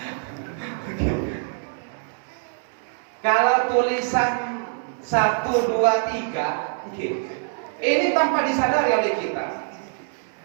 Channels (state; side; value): silent; left; 58 dB below the other